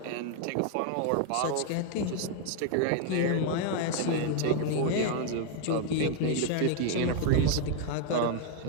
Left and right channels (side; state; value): both; different; correlation 0.01